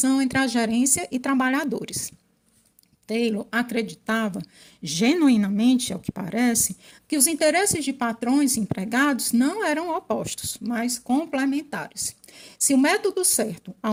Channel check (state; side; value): identical; both; correlation 1.00